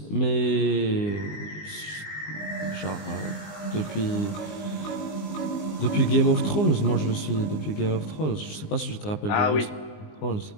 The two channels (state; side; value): late; right; 20 ms